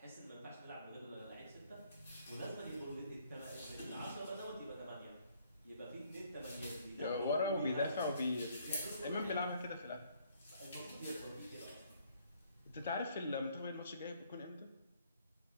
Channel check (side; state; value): both; inverted; correlation -0.64